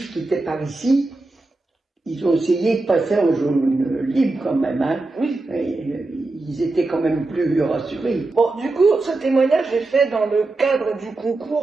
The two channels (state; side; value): quieter; left; 3.2 dB